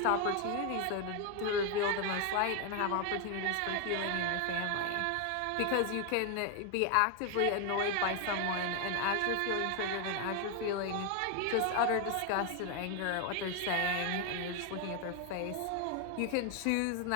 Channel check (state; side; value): different; both; correlation 0.01